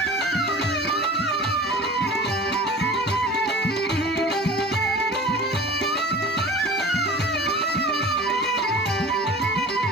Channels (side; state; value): both; normal; correlation 0.40